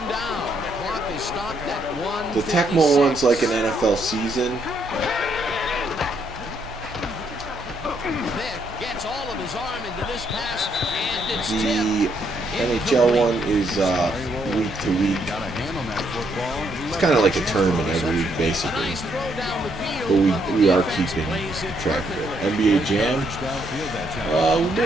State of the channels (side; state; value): both; normal; correlation 0.73